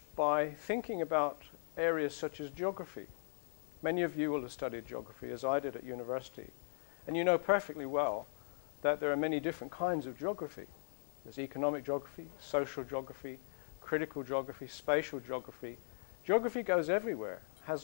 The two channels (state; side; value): silent; right; 52 dB below the other